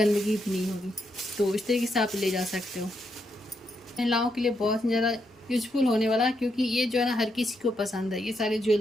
भी नहीं होगी। तो इस तरीके से आप ले जा सकते हो। महिलाओं के लिए बहुत ज़्यादा यूजफुल होने वाला है, क्योंकि ये जो है ना हर किसी को पसंद है। ये सारे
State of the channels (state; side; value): normal; both; correlation 0.80